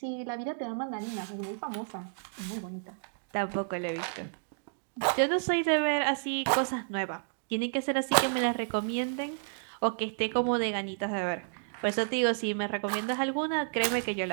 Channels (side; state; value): left; silent; digital silence